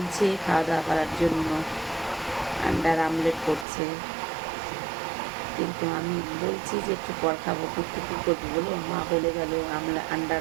খাওয়া দাওয়া করার জন্য, আন্ডার আমলেট করছে, কিন্তু আমি বলছি যে একটু পর খাবো, কিন্তু কী করবো বলো, মা বলে গেল আন্ডার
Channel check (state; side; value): drops out; left; at 3.7 s